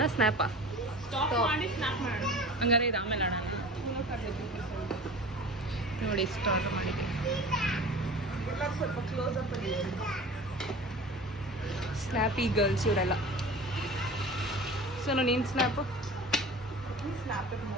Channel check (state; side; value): normal; both; correlation 0.38